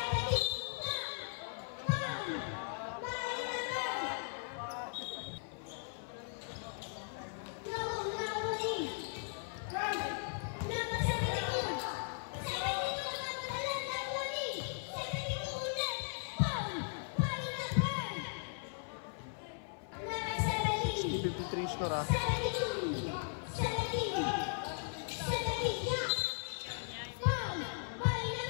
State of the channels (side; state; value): right; silent; 53 dB below the other